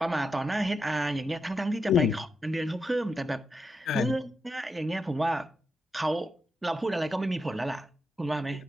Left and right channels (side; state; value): both; normal; correlation 0.86